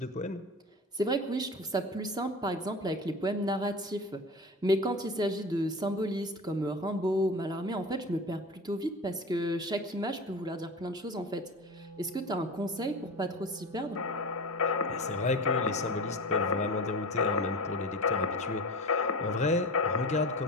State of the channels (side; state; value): both; normal; correlation 0.30